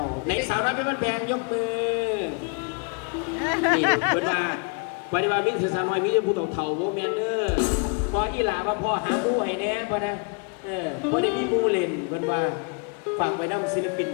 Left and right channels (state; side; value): quieter; right; 35.8 dB